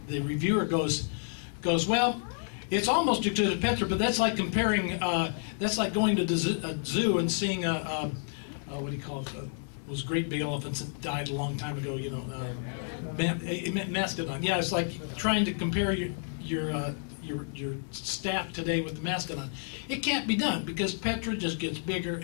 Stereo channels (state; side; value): silent; right; 58 dB below the other